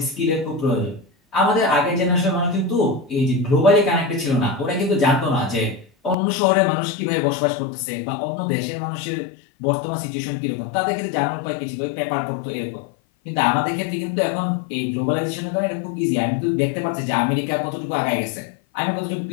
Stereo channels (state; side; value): drops out; right; at 6.2 s